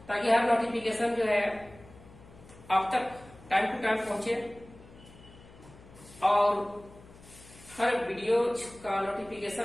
ताकि हर नोटिफिकेशन जो है आप तक टाइम टू टाइम पहुंचे और हर वीडियो का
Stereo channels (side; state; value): left; noise; hum, 21 dB below the sound